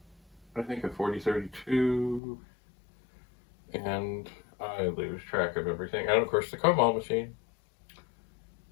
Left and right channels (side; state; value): right; drops out; at 2.2 s